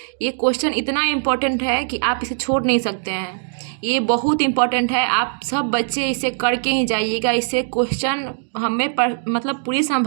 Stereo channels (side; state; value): left; silent; digital silence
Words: ये क्वेश्चन इतना इम्पोर्टेंट है कि आप इसे छोड़ नहीं सकते हैं। ये बहुत इम्पोर्टेंट है, आप सब बच्चे इसे करके ही जाइएगा। इससे क्वेश्चन हमें मतलब पूरी